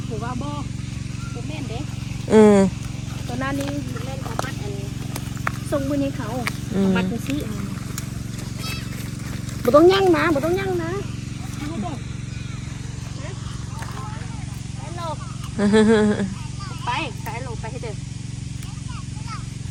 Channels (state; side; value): identical; both; correlation 1.00